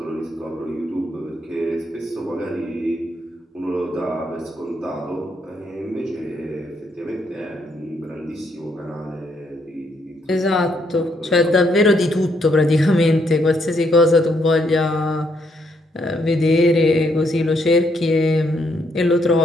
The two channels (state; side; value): normal; both; correlation 0.74